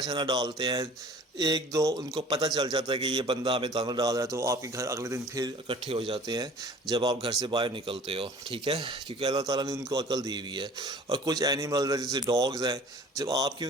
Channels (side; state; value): both; normal; correlation 0.47